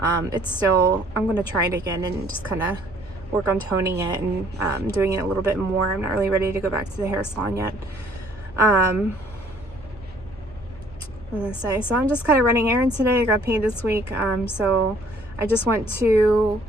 it's still, I'm going to try it again and just kind of work on toning it and doing it a little bit more. I'm not really ready to go back to the hair salon yet. I'm gonna say, so I'm just kind of running errands today. I got paid this week, so I just went to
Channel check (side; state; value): left; noise; hum, 22 dB below the sound